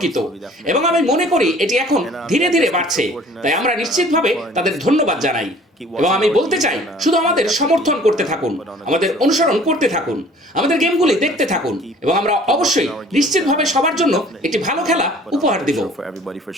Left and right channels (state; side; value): normal; both; correlation 0.51